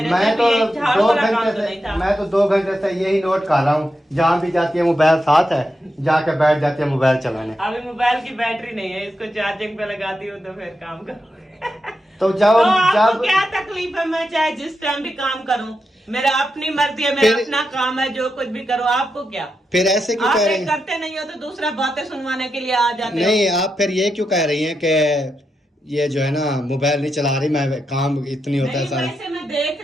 मैं तो झाड़ू 2 वाला काम घंटे तो नहीं था। मैं तो 2 घंटे से यही नोट कर रहा हूँ, जहाँ भी जाती है मोबाइल साथ है, जाके बैठ जाती है मोबाइल चलाने। अभी मोबाइल की बैटरी नहीं है, इसको चार्जिंग पे लगाती हूँ तो फिर काम करो। तो जब आपको क्या तकलीफ है? मैं चाहे जिस टाइम भी काम करूं, मेरा अपनी मर्जी है, मेरा अपना काम है, जो कुछ भी करो। आपको क्या? फिर ऐसे क्यों आप कह रही हैं? करते नहीं हो तो दूसरा बातें सुनवाने के लिए आ जाते हो। नहीं, आप फिर ये क्यों कह रही हैं कि ये जो है ना मोबाइल नहीं चला रही, मैं काम इतनी होता है नहीं, सारा। वैसे मैं देख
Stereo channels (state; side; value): normal; both; correlation 0.86